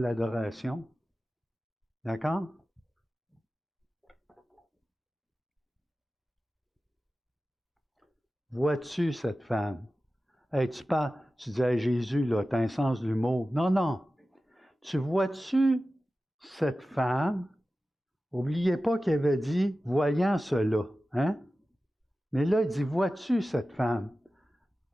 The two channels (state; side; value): normal; both; correlation 0.95